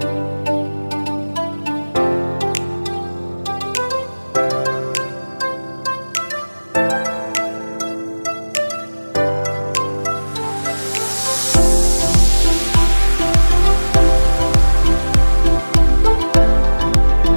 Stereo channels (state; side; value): inverted; both; correlation -1.00